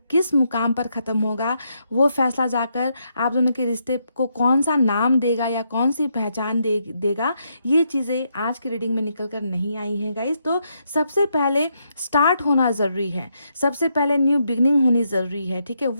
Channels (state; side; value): inverted; both; correlation -0.78